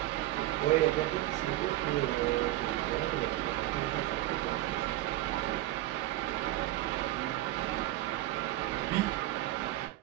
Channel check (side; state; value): left; quieter; 15.9 dB